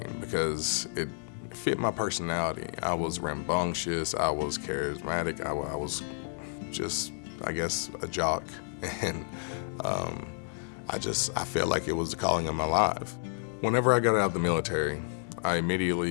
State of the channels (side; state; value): right; silent; 56 dB below the other